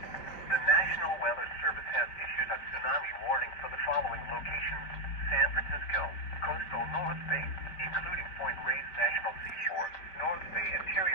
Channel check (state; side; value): late; right; 5.1 ms